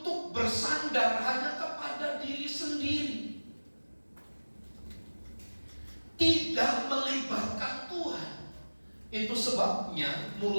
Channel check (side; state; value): both; inverted; correlation -1.00